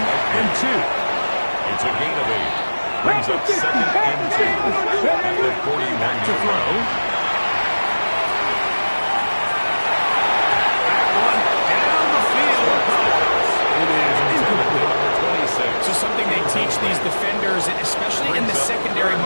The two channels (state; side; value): inverted; both; correlation -1.00